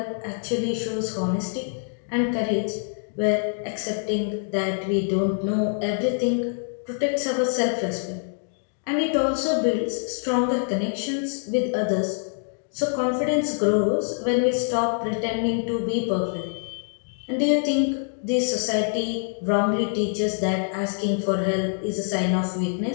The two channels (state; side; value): silent; right; 62 dB below the other